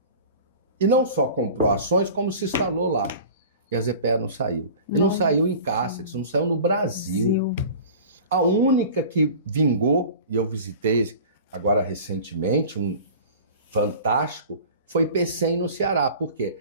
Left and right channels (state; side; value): inverted; both; correlation -0.40